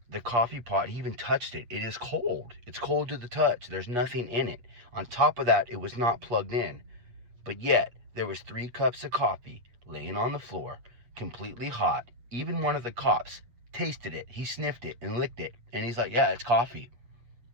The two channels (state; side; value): late; left; 8.3 ms